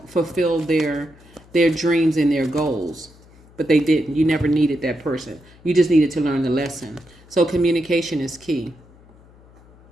fulfill their their dreams and their goals. But they didn't. You never needed that person. You just needed to learn the lesson. So communication is key.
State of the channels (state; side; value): noise; left; hum, 26 dB below the sound